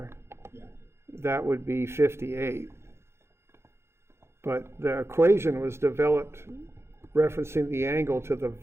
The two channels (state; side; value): late; left; 0.12 ms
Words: yeah, that would be 58. But the equation was developed referencing the angle to the